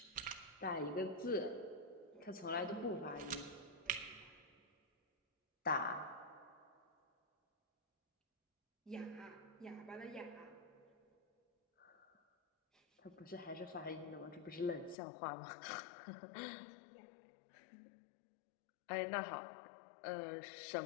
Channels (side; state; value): right; drops out; at 15.0 s